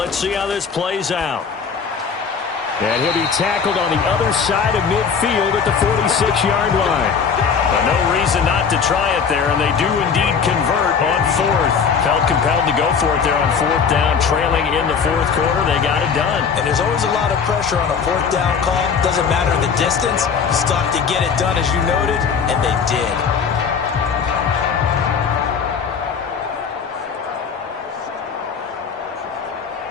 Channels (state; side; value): quieter; right; 6.2 dB